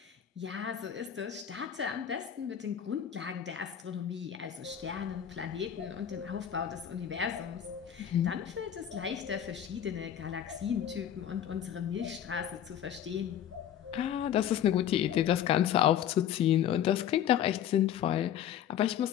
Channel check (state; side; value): quieter; right; 9.9 dB